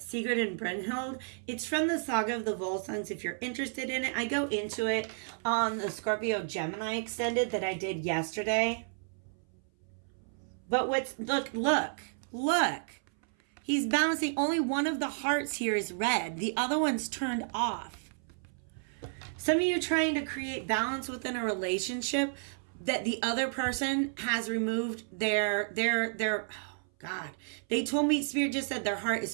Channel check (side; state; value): left; silent; 56 dB below the other